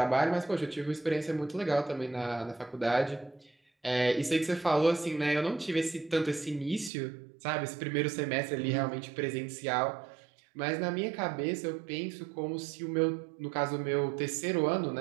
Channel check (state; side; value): drops out; left; at 6.9 s